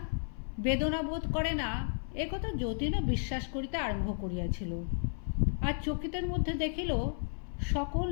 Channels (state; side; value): silent; right; 56 dB below the other